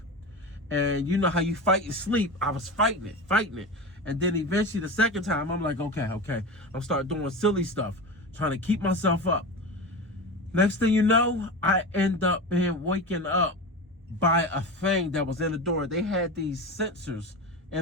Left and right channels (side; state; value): both; normal; correlation 0.26